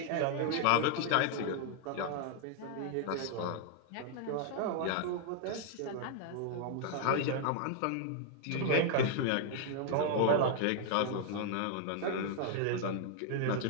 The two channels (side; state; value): both; different; correlation 0.00